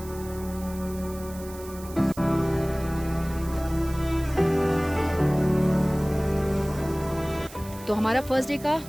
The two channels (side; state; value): right; noise; hiss, 18 dB below the sound